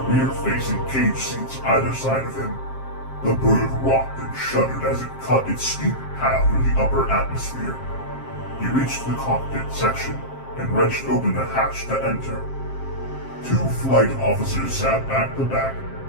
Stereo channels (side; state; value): right; late; 7.5 ms